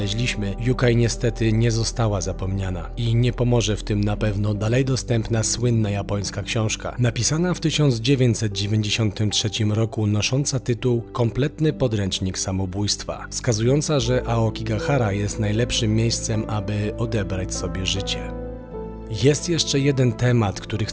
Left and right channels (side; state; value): both; identical; correlation 1.00